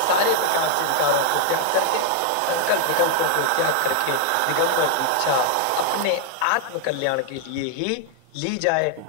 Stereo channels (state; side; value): different; both; correlation 0.00